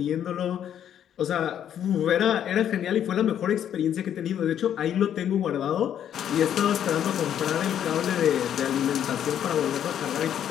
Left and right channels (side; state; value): right; quieter; 9.8 dB